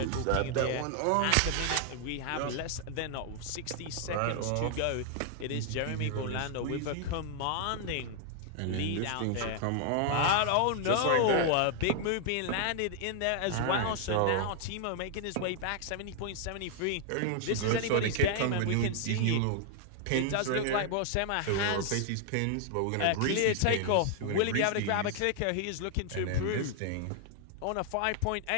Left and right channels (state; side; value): different; both; correlation 0.00